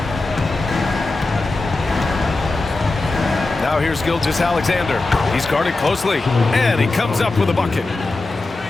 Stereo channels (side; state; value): right; quieter; 3.2 dB